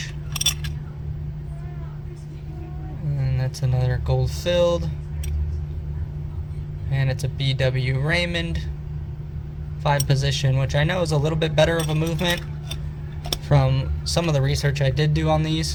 And that's another gold filled. And it's a BW Raymond 5 position, which I know is a little bit better of a movement from some of the research I did do on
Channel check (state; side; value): identical; both; correlation 1.00